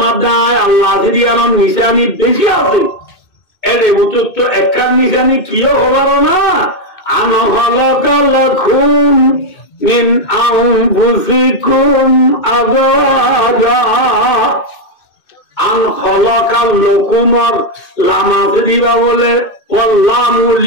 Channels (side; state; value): right; late; 2.2 ms